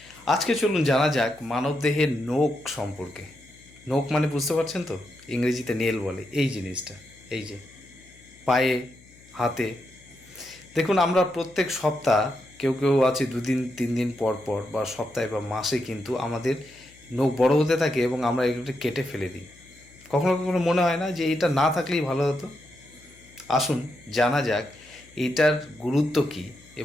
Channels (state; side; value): noise; left; hum, 26 dB below the sound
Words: আজকে চলুন জানা যাক মানবদেহের নখ সম্পর্কে। নখ মানে বুঝতে পারছেন তো? ইংরেজিতে নেল বলে এই জিনিসটা। এই যে পায়ে, হাতে। দেখুন, আমরা প্রত্যেক সপ্তাহ কেউ কেউ আছে 2 দিন 3 দিন পর পর বা সপ্তাহে বা মাসে কিন্তু আমাদের নখ বড় হতে থাকে এবং আমরা এগুলো কেটে ফেলে দিই। কখনো কখনো মনে হয় না যে এটা না থাকলেই ভালো হতো? আসুন জানা যাক এটার গুরুত্ব কী